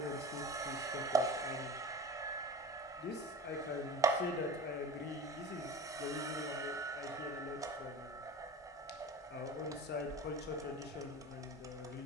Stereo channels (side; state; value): both; normal; correlation 0.35